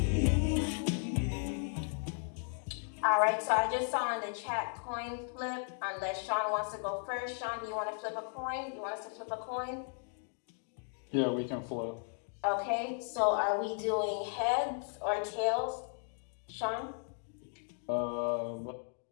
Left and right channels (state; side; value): silent; right; 54 dB below the other